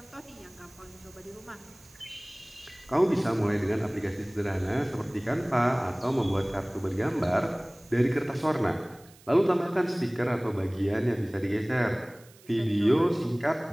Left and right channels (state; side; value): noise; right; hiss, 25 dB below the sound